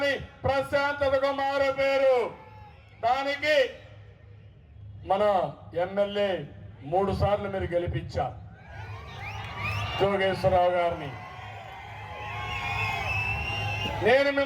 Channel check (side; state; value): both; identical; correlation 1.00